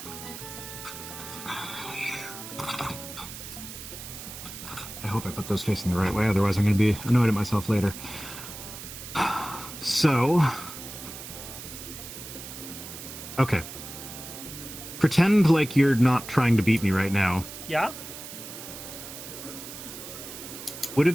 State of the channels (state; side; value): noise; right; hiss, 11 dB below the sound